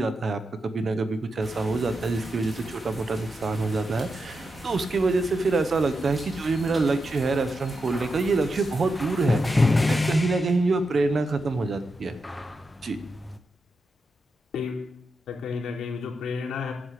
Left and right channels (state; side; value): normal; both; correlation 0.87